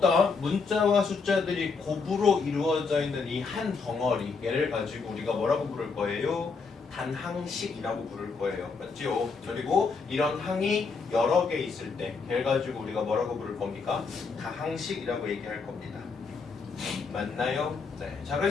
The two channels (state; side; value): quieter; right; 4.8 dB